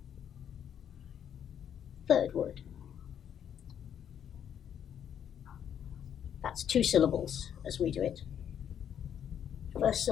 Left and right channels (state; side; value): quieter; right; 9.1 dB